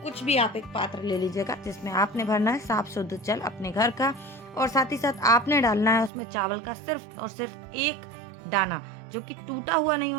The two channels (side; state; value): left; drops out; at 6.1 s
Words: कुछ भी आप एक पात्र ले लीजिएगा, जिसमें आपने भरना है साफ शुद्ध जल अपने घर का, और साथ ही साथ आपने डालना है उसमें चावल का सिर्फ और सिर्फ एक दाना, जो कि टूटा हुआ नहीं